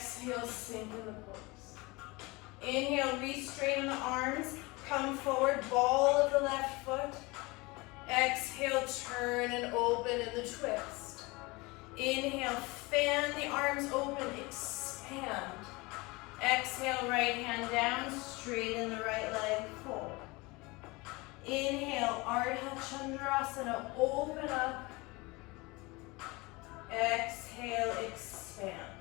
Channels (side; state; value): right; quieter; 24.3 dB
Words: sink in the pose. Inhale, re-straighten the arms, come forward, ball of the left foot. Exhale, turn and open in the twist. Inhale, fan the arms open, expand. Exhale, right hand down, straighten the right leg, fold. Inhale, Ardha Chandrasana, open up. Exhale, expand.